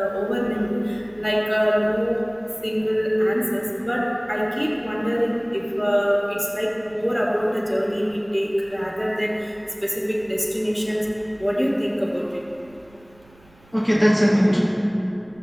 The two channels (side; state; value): right; noise; rumble, 28 dB below the sound